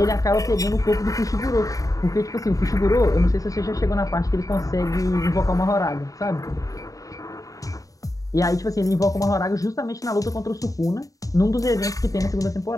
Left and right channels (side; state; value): right; late; 0.16 ms